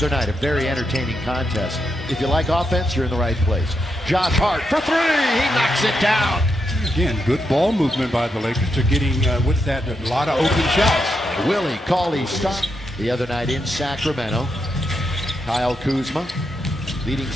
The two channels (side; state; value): both; normal; correlation 0.83